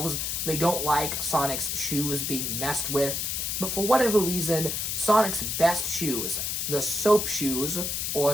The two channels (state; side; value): noise; left; hiss, 1 dB below the sound